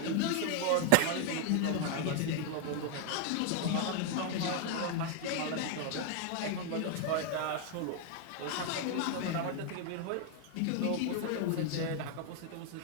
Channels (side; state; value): both; different; correlation 0.00